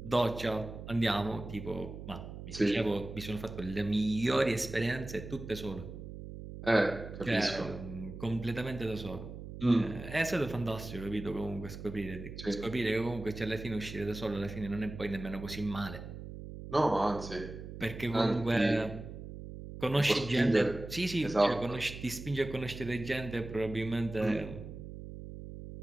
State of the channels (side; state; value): right; noise; hum, 11 dB below the sound